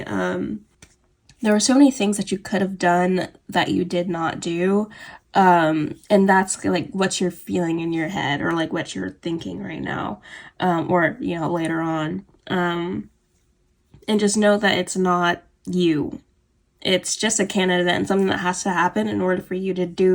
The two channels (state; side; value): identical; both; correlation 1.00